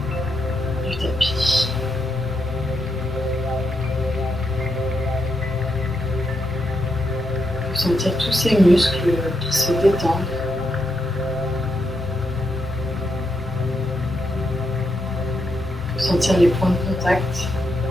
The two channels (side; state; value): both; normal; correlation 0.82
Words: du tapis. On peut sentir tous ces muscles qui se détendent. On peut sentir les points de contact